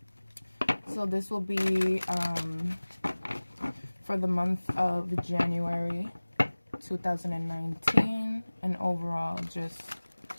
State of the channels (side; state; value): both; inverted; correlation -1.00